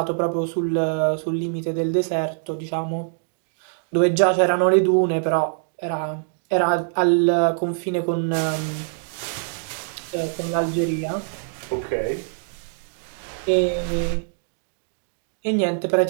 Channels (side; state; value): left; silent; digital silence